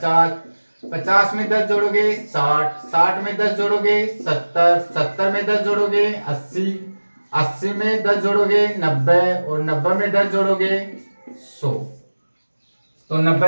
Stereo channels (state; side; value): inverted; both; correlation -1.00